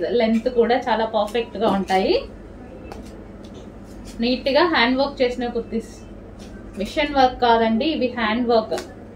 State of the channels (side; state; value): both; identical; correlation 1.00